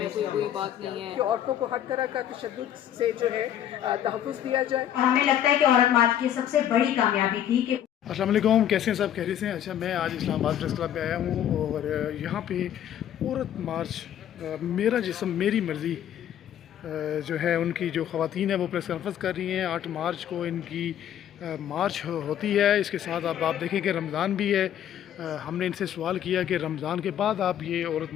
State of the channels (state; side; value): quieter; right; 10.5 dB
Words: کوئی بات نہیں ہے کہ عورتوں کو ہر طرح کا تشدد سے جو ہے تحفظ دیا جائے. اور ہمیں لگتا ہے کہ عورت مارچ کی سب سے بڑی کامیابی تھی کہ السلام علیکم، کیسے ہیں سب؟ خیریت سے ہیں؟ اچھا، میں آج اسلام آباد پریس کلب پہ آیا ہوں اور یہاں پہ عورت مارچ میرا جسم میری مرضی جو ہے ان کی جو خواتین ہیں وہ پریس کانفرنس کر رہی ہیں. 8 مارچ کو ان کی مارچ ہوتی ہے. اس کے ساتھ اب آپ دیکھیں کہ رمضان بھی ہے. ہم نے ان سے سوال کیا کہ رمضان کے بعد آپ یہ عورت